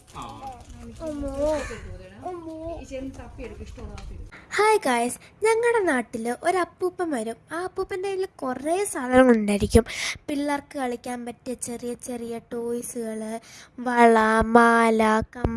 ഗായ്സ്, ഞങ്ങളുടെ നാട്ടിൽ ഒരു അപ്പൂപ്പൻ വരും. ആ അപ്പൂപ്പൻ്റെ കയ്യിൽ കുറേ സാധനങ്ങളുണ്ടായിരിക്കും. പിള്ളേർക്ക് കളിക്കാൻ പറ്റിയ ചെറിയ ചെറിയ ടോയ്സുകൾ, വള, മാല,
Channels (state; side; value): identical; both; correlation 1.00